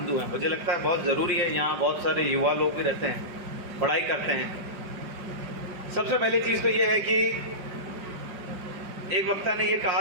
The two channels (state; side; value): late; left; 5.3 ms